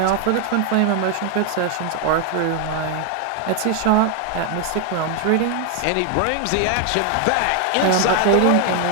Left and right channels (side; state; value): both; different; correlation 0.01